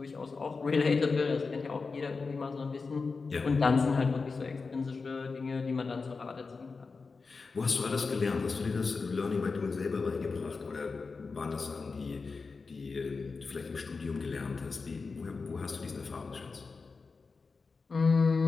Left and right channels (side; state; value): right; quieter; 4.5 dB